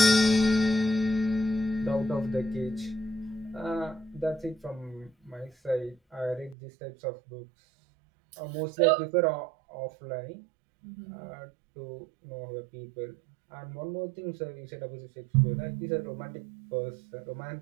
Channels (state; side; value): drops out; left; at 6.6 s